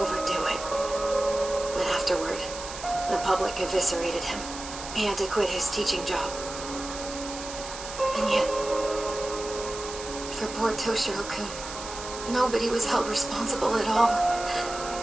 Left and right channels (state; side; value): noise; right; hiss, 10 dB below the sound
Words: it. But afterward, the public eviscerated him. He had to quit his teaching job. And yet, for poor Toshiro-kun, nobody was held responsible at all.